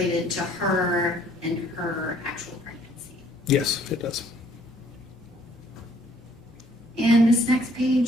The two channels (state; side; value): normal; both; correlation 0.61